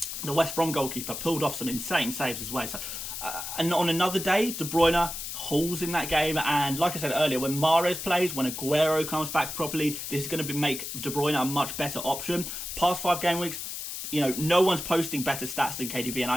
the West Brom goalkeeper, pulled off some insane saves as well. So, and on another day, De Bruyne hauls in that game. And like I said earlier, when Mahrez plays, when Aguero comes back properly, this is going to make De Bruyne a much better option. Past 5 game weeks, no one's posting better stats than KDB,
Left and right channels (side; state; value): left; noise; hiss, 6 dB below the sound